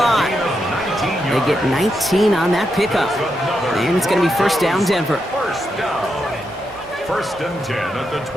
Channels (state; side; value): normal; both; correlation 0.84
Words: They get 19 on that pickup. And it's going to be 1st down, Denver. 1st down. 1st and 10 at the